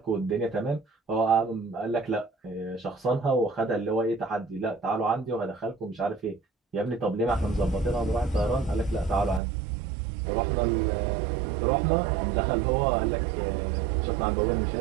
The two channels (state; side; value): drops out; left; at 9.4 s